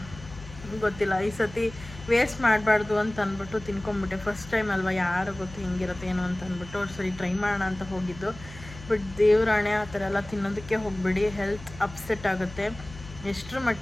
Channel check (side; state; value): left; noise; hum, 16 dB below the sound